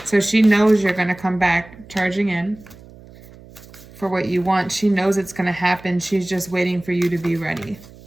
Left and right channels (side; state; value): right; noise; hum, 21 dB below the sound